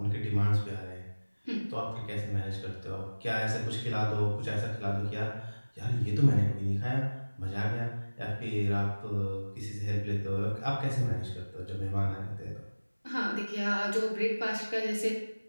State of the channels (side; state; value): both; inverted; correlation -1.00